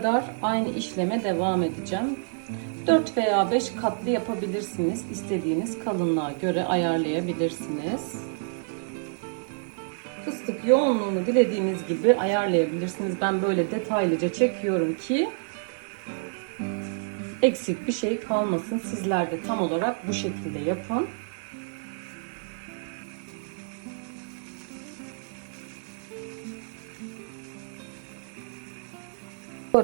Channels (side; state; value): left; silent; digital silence